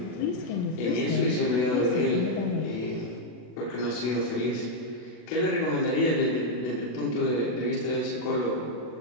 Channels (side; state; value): right; late; 40 ms